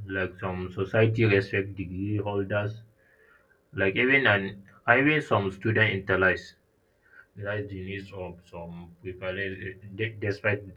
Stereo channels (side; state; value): both; identical; correlation 1.00